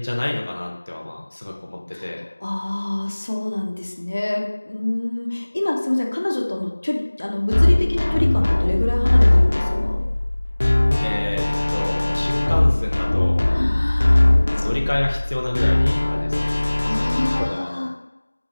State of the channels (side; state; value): both; inverted; correlation -1.00